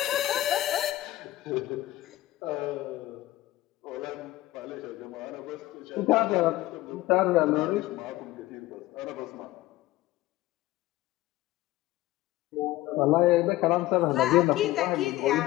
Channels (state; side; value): quieter; right; 16.7 dB